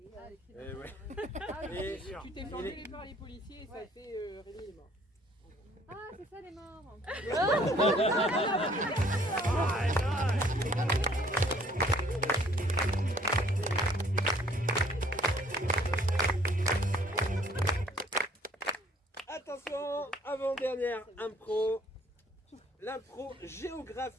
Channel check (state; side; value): normal; both; correlation 0.59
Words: Ah, les Eh ouais. Ah, oui. Et Tu t'es fait engueuler par les policiers et ça a fait Rémi est mort. Ah, c'est ça les morts. attention, avant-dernière impro. L'impro